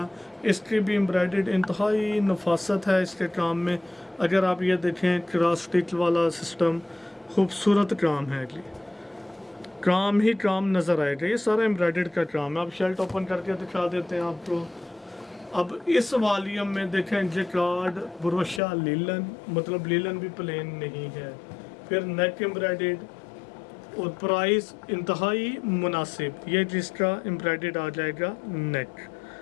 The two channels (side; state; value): right; drops out; at 18.6 s